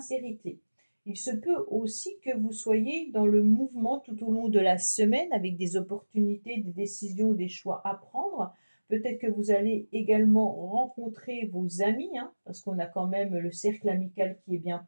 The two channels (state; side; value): inverted; both; correlation -1.00